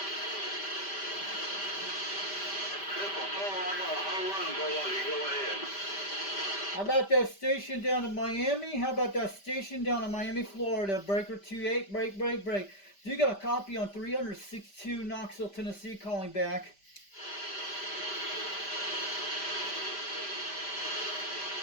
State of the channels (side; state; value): right; late; 5.1 ms